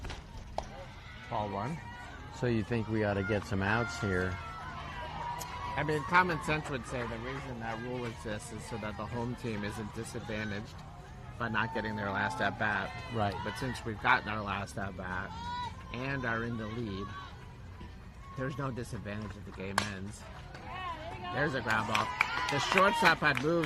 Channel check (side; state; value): both; identical; correlation 1.00